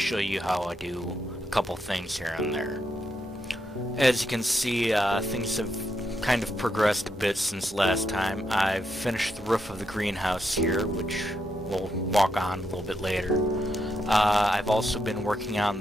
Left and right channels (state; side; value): normal; both; correlation 0.81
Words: you how I do a couple things here and there. As you can see, things have kind of progressed a bit since last time. I've finished the roof of the greenhouse here, which we'll walk on a little bit later. I've also been working